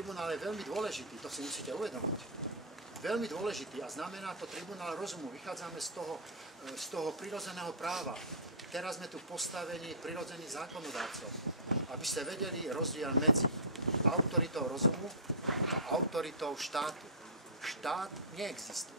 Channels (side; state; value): both; normal; correlation -0.19